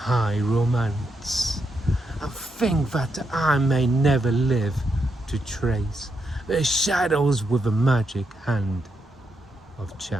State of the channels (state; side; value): normal; both; correlation 0.81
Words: romance, and think that I may never live to trace the shadows with the magic hand of